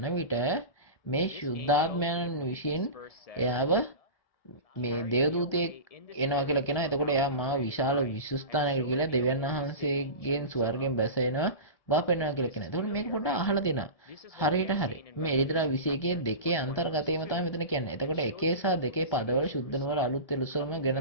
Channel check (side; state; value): right; late; 1.2 ms